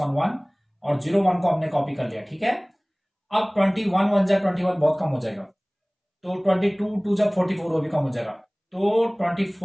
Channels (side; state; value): both; identical; correlation 1.00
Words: 1 और 01 को हमने कॉपी कर लिया। ठीक है, अब 21 1 जा 21 बहुत कम हो जाएगा, तो 22 2 जा 44 वो भी कम हो जाएगा, तो